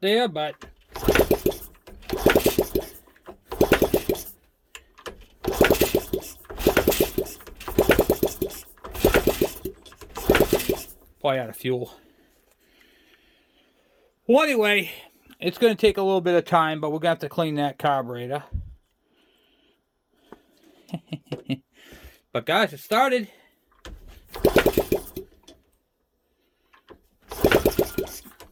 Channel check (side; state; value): both; identical; correlation 1.00